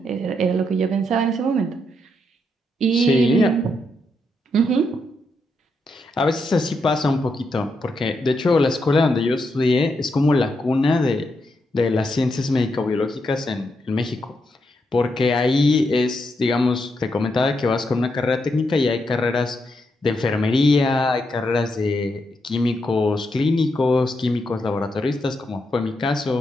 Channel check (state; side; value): normal; both; correlation 0.81